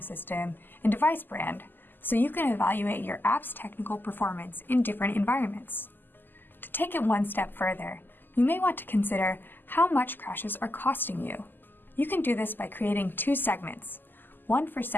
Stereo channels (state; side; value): late; right; 0.091 ms